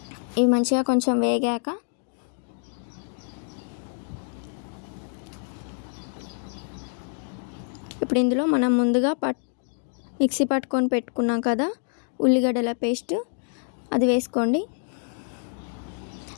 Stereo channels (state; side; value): silent; right; 56 dB below the other